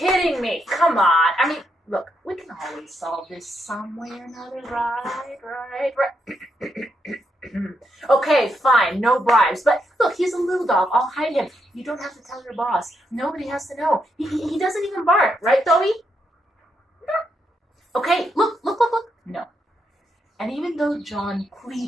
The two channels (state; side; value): normal; both; correlation 0.80